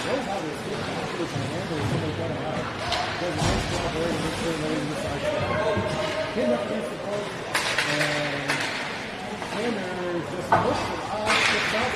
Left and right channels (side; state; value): both; identical; correlation 1.00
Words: Knows how to escape the competition and handle somebody got him out. Does a nice job there to make sure nobody's inside. Pinned up against the post. And Sanders just looks it off. Gets out